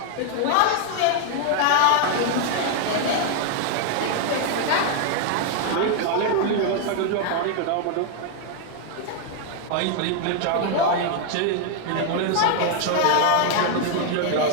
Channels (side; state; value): both; different; correlation 0.00